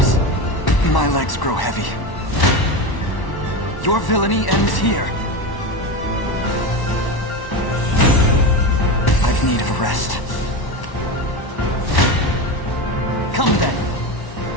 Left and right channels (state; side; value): late; right; 1.1 ms